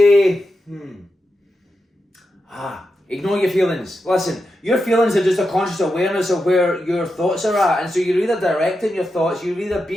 ignore your feelings. Listen, your feelings are just a conscious awareness of where your thoughts are at. And so you're either directing your thoughts, you're either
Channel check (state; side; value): normal; both; correlation 0.88